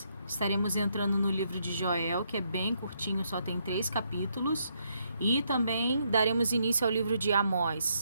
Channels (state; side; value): inverted; both; correlation -0.75